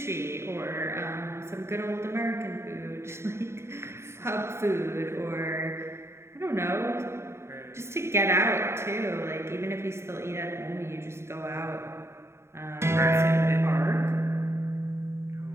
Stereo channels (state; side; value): late; left; 0.13 ms